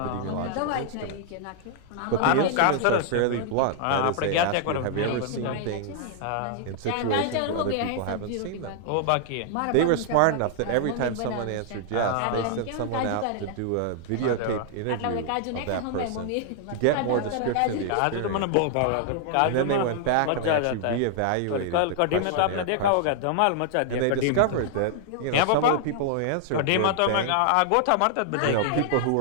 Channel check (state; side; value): different; both; correlation -0.01